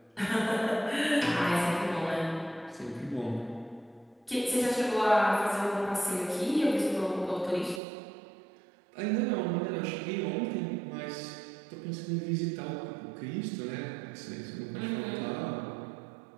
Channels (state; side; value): drops out; left; at 7.8 s